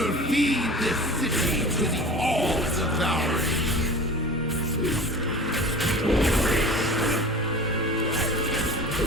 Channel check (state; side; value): normal; both; correlation 0.37